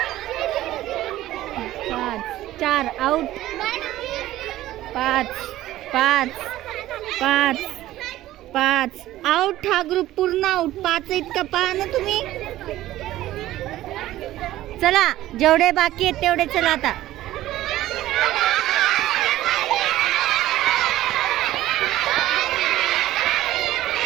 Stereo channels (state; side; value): quieter; left; 14.9 dB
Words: 4 out. 5 out. हा ग्रुप पूर्ण आउट. 5 इतका पहा ना तुम्ही. चला जेवढे बाकी आहेत तेवढे चला आता.